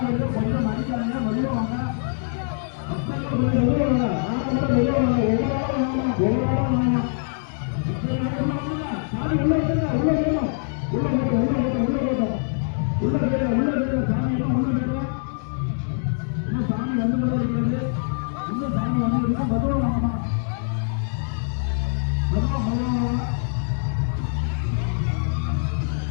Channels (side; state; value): right; silent; digital silence